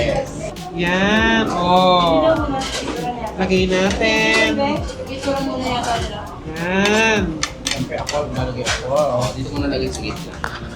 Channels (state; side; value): identical; both; correlation 1.00